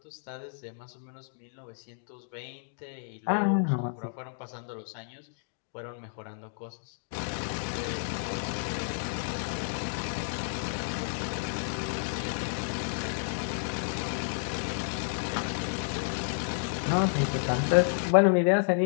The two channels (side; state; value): right; silent; digital silence